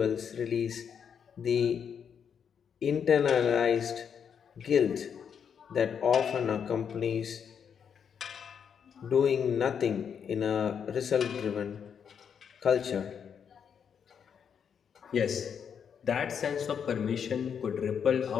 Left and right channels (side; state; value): right; quieter; 7.5 dB